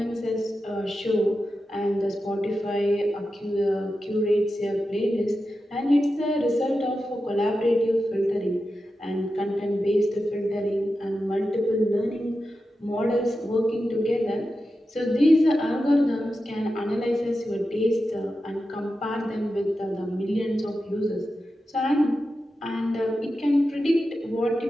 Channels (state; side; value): normal; both; correlation 0.91